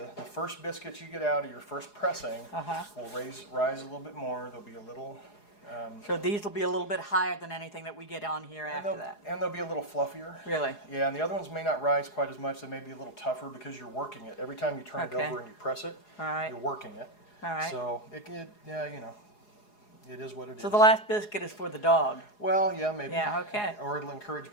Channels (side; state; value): right; late; 4.8 ms